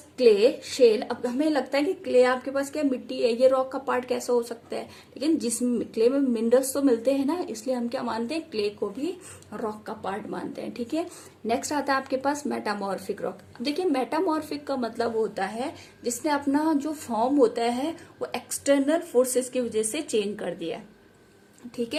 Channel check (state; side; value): identical; both; correlation 1.00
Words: क्ले, शेल। अब हमें लगता है कि क्ले आपके पास क्या मिट्टी है, ये रॉक का पार्ट कैसा हो सकता है, लेकिन जिस क्ले में मिनरल्स तो मिलते हैं ना, इसलिए हम क्या मानते हैं, क्ले को भी रॉक का पार्ट मानते हैं। ठीक है, नेक्स्ट आता है आपके पास मेटामॉर्फिक रॉक। अब देखिए मेटामॉर्फिक का मतलब होता है जिसने अपना जो फॉर्म होता है वो एक्सटर्नल फोर्सेस की वजह से चेंज कर दिया। ठीक